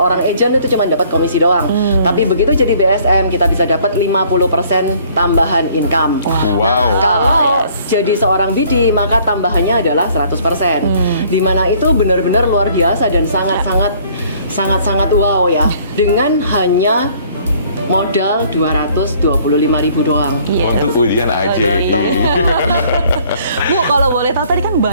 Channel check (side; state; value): both; inverted; correlation -0.58